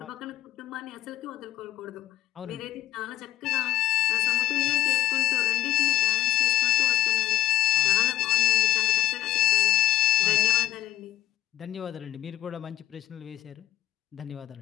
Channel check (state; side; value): quieter; right; 14.3 dB